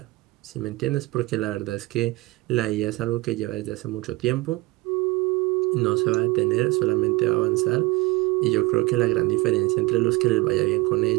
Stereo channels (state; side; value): quieter; left; 21.5 dB